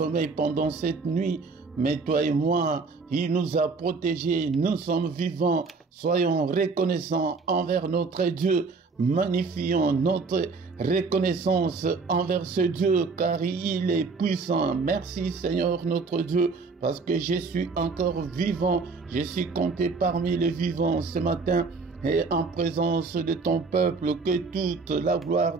pendant cette nuit, mais toi et moi, il nous a protégés, nous sommes vivants. Soyons reconnaissants envers notre Dieu. Magnifions notre reconnaissance envers ce Dieu car il est puissant. Merci Seigneur notre Dieu parce que je suis encore vivant. Je suis compté parmi les vivants ce matin et en présence de ton peuple. Que toute la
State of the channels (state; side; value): quieter; left; 4.3 dB